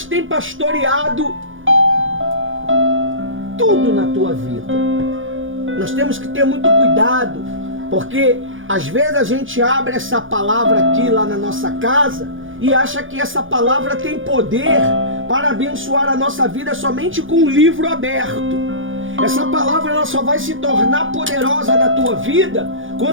têm pastoreado tudo na tua vida. Nós temos que ter muito cuidado, porque às vezes a gente abre essa palavra aqui lá na nossa casa e acha que essa palavra tem poder para abençoar a nossa vida somente com um livro aberto. Essa palavra ela só vai se tornar poderosa na tua vida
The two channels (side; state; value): left; late; 0.58 ms